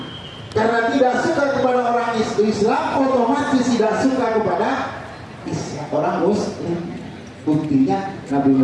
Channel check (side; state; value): both; identical; correlation 1.00